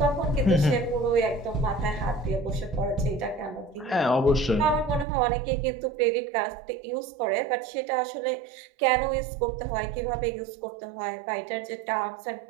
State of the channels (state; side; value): drops out; left; at 5.1 s